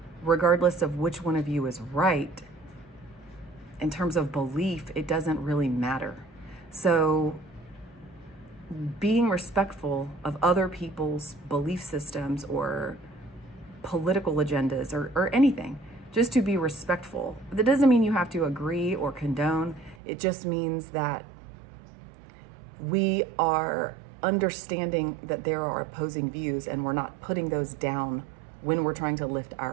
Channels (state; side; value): drops out; left; at 20.0 s